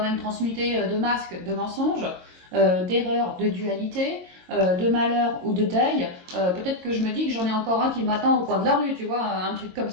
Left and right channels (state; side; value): late; left; 22 ms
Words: même transmuté de masques, de mensonges, d'erreurs, de dualité, de malheur ou de deuil. Peut-être que je me dis que j'en ai encore un qui m'attend au coin de la rue, tu vois, un truc comme